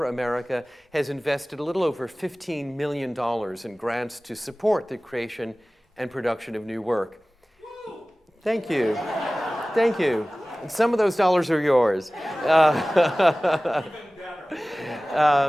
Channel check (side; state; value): both; normal; correlation 0.98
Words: America has invested a little over $15 million in grants to support the creation and production of new work. Thank you. Thank you. And some of those dollars are yours.